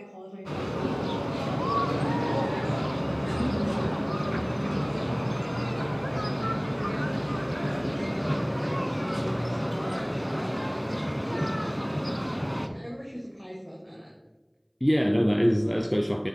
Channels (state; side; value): identical; both; correlation 1.00